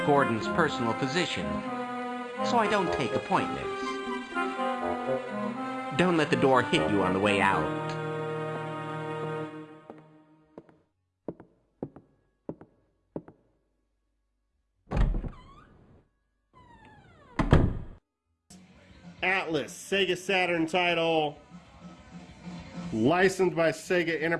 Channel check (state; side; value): identical; both; correlation 1.00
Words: Gordon's personal physician, so I don't take appointments. Don't let the door hit you on the way out. Atlas, Sega Saturn title, licensed by Sega